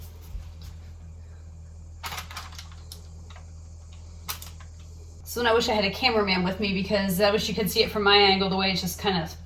So I wish I had a cameraman with me, because I wish you could see it from my angle, the way it's just kind of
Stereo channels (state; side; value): identical; both; correlation 1.00